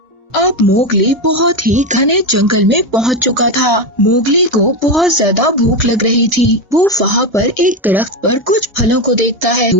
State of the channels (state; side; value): normal; both; correlation 0.13